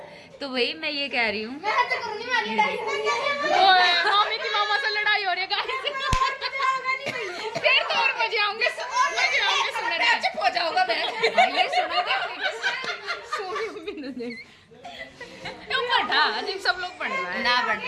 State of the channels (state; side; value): identical; both; correlation 1.00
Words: तो भाई मैं ये कह रही हूँ मामी की मामा से लड़ाई हो रही है गाइस। फिर तो और मजे आऊंगे सुनने। चुप हो जाऊंगा मैं। ये सुनोगे अजीब सब लोग पढ़ रहा है ना बढ़